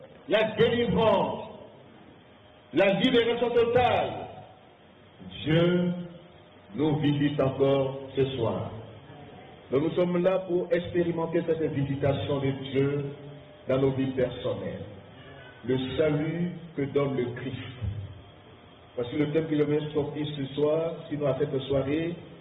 la délivrance, la libération totale. Dieu nous visite encore ce soir. Nous sommes là pour expérimenter cette visitation de Dieu dans nos vies personnelles. Le salut que donne le Christ. Parce que le thème qu'il vient sortir ce soir, sinon à cette soirée,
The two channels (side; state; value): both; identical; correlation 1.00